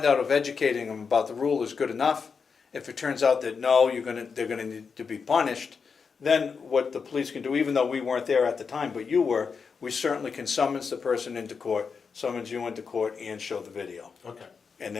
out if educating them about the rule is good enough. If it turns out that no, they're gonna need to be punished, then what the police can do, even though we weren't there at the time, but you were, we certainly can summons the person into court, summons you into court, and show the video. okay. And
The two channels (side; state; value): right; quieter; 5.6 dB